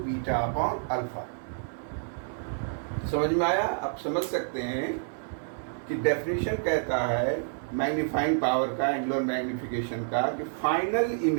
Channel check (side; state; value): left; silent; 59 dB below the other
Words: beta upon alpha. समझ में आया? आप समझ सकते हैं कि definition कहता है मैग्नीफाइंग पावर का, एंगुलर मैग्निफिकेशन का, कि फाइनल